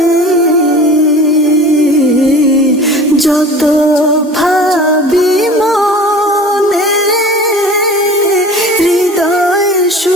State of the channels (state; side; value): normal; both; correlation 0.41